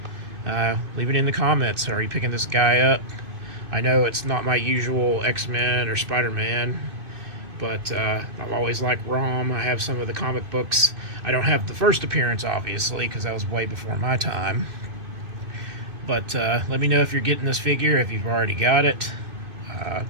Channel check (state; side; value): late; left; 2.6 ms